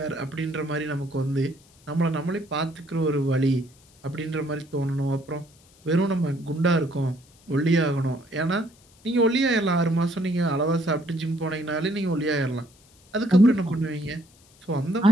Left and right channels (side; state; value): left; noise; hiss, 29 dB below the sound